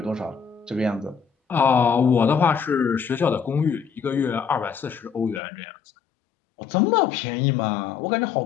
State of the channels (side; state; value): right; drops out; at 5.4 s